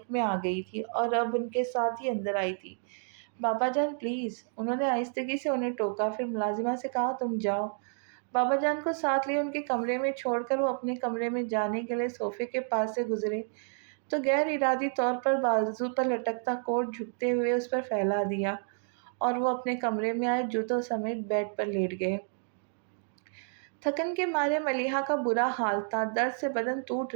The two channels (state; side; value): silent; left; 57 dB below the other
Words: میں آ گئی تھی اور اب ان کے ساتھ ہی اندر آئی تھی۔ بابا جان پلیز، انہوں نے آہستگی سے انہیں ٹوکا، پھر ملازمہ سے کہا، تم جاؤ۔ بابا جان کو ساتھ لیے ان کے کمرے میں چھوڑ کر وہ اپنے کمرے میں جانے کے لیے صوفے کے پاس سے گزرے تو غیر ارادی طور پر بازو پر لٹکتا کوٹ جھکتے ہوئے اس پر پھیلا دیا اور وہ اپنے کمرے میں آئے جوتوں سمیت بیڈ پر لیٹ گئے۔ تھکن کے مارے ملیحہ کا برا حال تھا، درد سے بدن ٹوٹ